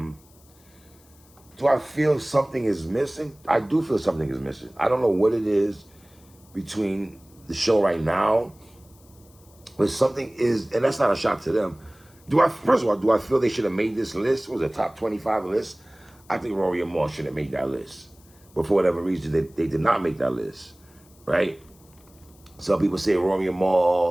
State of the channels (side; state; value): left; noise; hiss, 28 dB below the sound